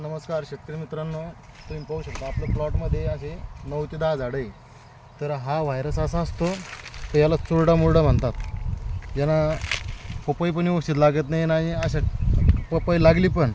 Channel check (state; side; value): identical; both; correlation 1.00